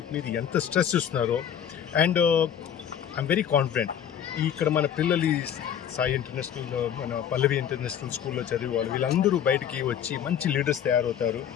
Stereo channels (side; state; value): right; quieter; 9.1 dB